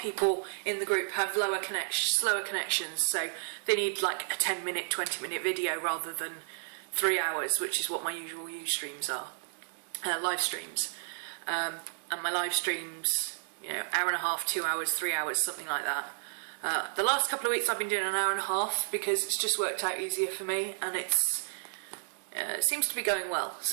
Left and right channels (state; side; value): silent; left; digital silence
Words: in the group have slower connections, so they need like a 10-minute, 20-minute video rather than 3 hours, which is what my usual streams are, live streams. And my live streams, you know, hour and a half, 2 hours, 3 hours, something like that. The last couple of weeks I've been doing an hour and a half because it's just worked out easier for me, and it seems to be going well,